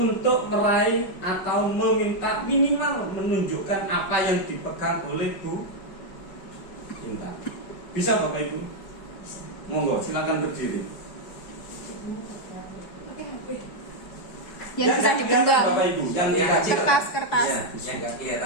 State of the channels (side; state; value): right; late; 4.7 ms